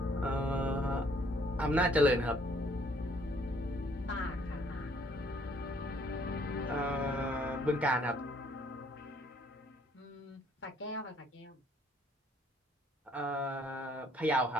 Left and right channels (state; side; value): normal; both; correlation 0.63